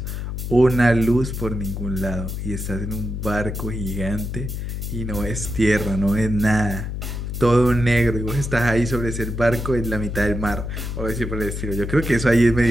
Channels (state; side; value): noise; left; hum, 5 dB below the sound